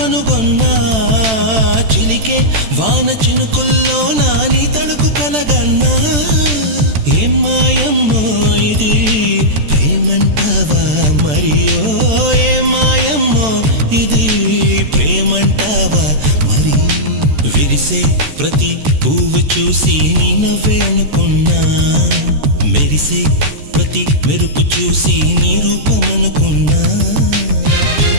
చిలికే వాన చినుకుల్లోనా నీ తళుకు కలగన్నా. ఏం మాయమ్మో ఇది ప్రేమంటావా మరియో, ఏం మాయమ్మో ఇది ప్రేమంటావా మరి. విరిసే ప్రతి పువ్వు చూసి నీ నవ్వే అనుకున్నా, మెరిసే ప్రతి మెరుపు చూసి నీ రూపమనుకున్నా.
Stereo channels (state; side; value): late; left; 14 ms